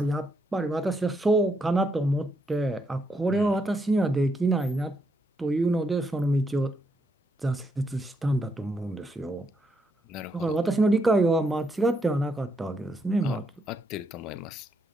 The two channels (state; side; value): normal; both; correlation 0.78